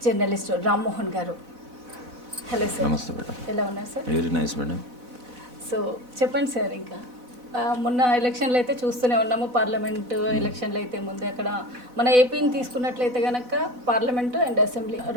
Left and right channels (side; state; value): left; late; 4.0 ms